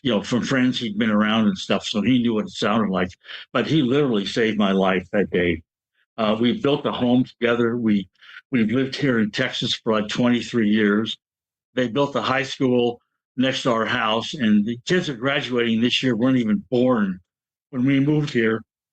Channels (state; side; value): identical; both; correlation 1.00